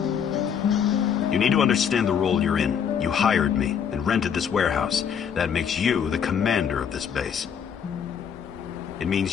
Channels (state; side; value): quieter; right; 7.7 dB